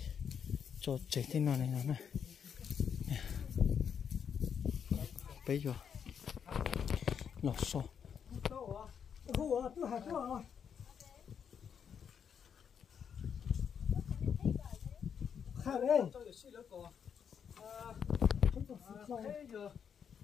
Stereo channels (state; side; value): quieter; right; 7.5 dB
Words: cho chế thế nào này nó này. Bây giờ lò sò.